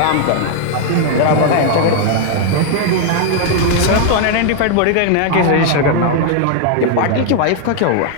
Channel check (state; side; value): different; both; correlation 0.00